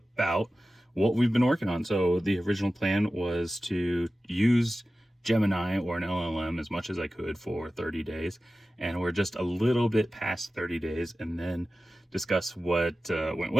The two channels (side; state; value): both; normal; correlation 0.95